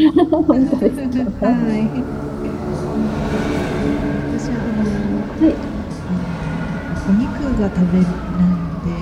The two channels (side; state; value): both; identical; correlation 1.00